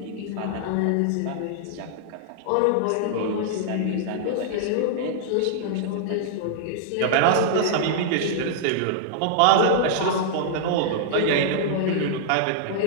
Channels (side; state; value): both; different; correlation -0.01